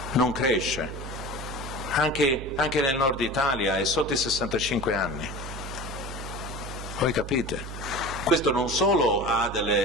non cresce, anche nel nord Italia è sotto i 65 anni, voi capite? Questo non solo ha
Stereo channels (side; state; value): right; noise; hum, 9 dB below the sound